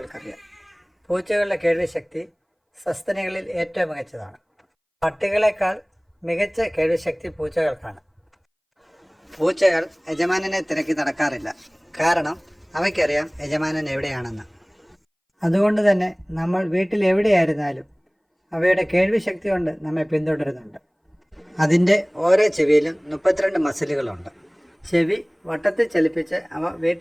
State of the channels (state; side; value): identical; both; correlation 1.00